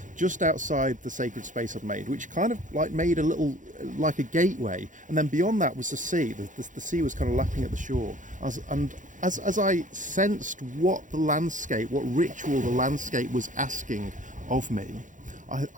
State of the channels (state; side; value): late; left; 0.37 ms